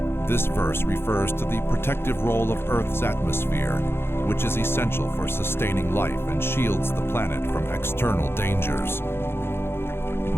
This verse refers to the protective role of Earth's atmosphere, which is essential for sustaining life and shields the planet from external dangers.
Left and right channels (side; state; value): right; late; 0.11 ms